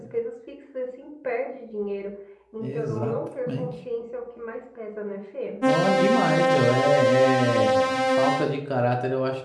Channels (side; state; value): both; identical; correlation 1.00